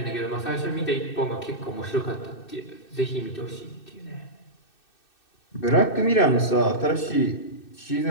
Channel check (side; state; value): right; late; 2.6 ms